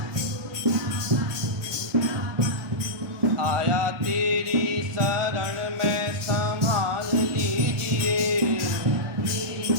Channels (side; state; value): left; late; 1.5 ms